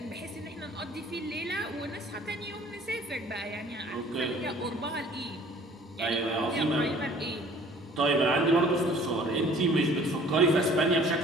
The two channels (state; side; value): normal; both; correlation 0.52